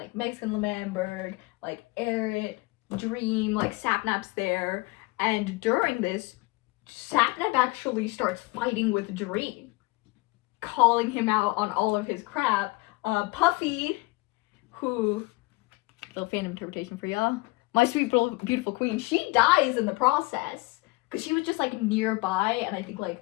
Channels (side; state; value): right; quieter; 23.8 dB